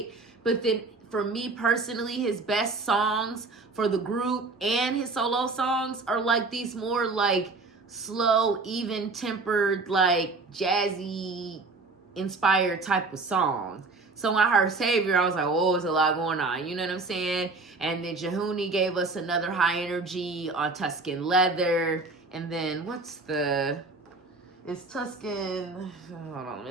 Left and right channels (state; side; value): quieter; left; 3.7 dB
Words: but then for me personally, his best songs for the group and his solo songs are like these more like slow, even-tempered, like jazzy inspired type of songs. So when I heard Savior, I was like, oh, there's a lot going on. You know what I'm saying? And then Jehuni gave us another high energy on Tuscan Leather. And then it's Tuscan. Hold on, let me